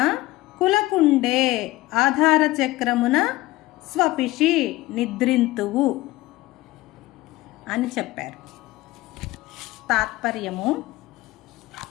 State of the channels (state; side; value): quieter; right; 18.5 dB